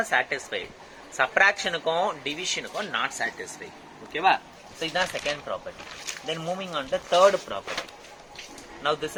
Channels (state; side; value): identical; both; correlation 1.00